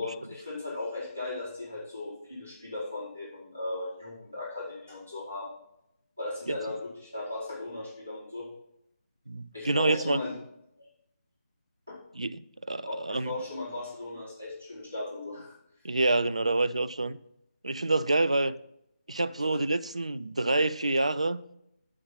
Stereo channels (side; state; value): both; inverted; correlation -0.83